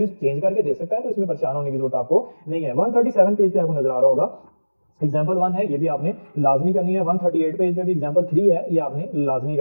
चेंज करके दे सकता है, तो इसमें परेशान होने की जरूरत आपको नहीं है। 137 पेज पे आपको नजर आ रहा होगा एग्जाम्पल 1 है, ये भी आपने लाजमी करनी है। 138 पेज पे भी एग्जाम्पल 3 है, ये आपने लाजमी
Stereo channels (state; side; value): inverted; both; correlation -1.00